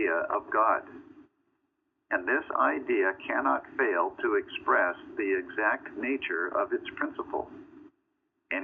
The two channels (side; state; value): both; identical; correlation 1.00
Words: of God. And this idea cannot fail to express the exact nature of its principle,